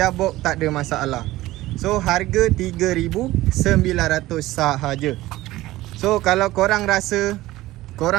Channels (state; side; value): quieter; left; 17.1 dB